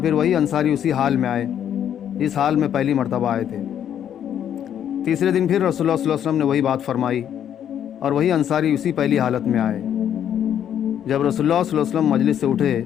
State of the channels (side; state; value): right; quieter; 9.7 dB